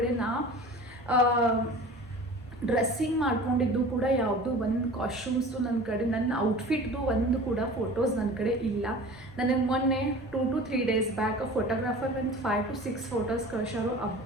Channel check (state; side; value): normal; both; correlation 0.40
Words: ನಾ ಡ್ರೆಸ್ಸಿಂಗ್ ಮಾಡ್ಕೊಂಡಿದ್ದು ಕೂಡ ಯಾವುದು ಒಂದು ಕಾಸ್ಟ್ಯೂಮ್ಸು ನನ್ನ ಕಡೆ, ನನ್ನ ಔಟ್ಫಿಟ್ದು ಒಂದು ಕೂಡ ಫೋಟೋಸ್ ನನ್ನ ಕಡೆ ಇಲ್ಲ. ನನಗೆ ಮೊನ್ನೆ 2 to 3 days ಬ್ಯಾಕ್ ಫೋಟೋಗ್ರಾಫರ್ ಒಂದು 5 to 6 ಫೋಟೋಸ್ ಕಳ್ಸಾರು.